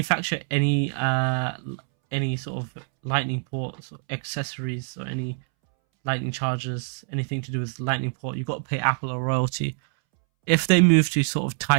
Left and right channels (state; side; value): silent; left; 62 dB below the other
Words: any sort of Lightning ports or accessories or any Lightning chargers, anything to do with Lightning port, you've got to pay Apple a royalty. If they move to sort of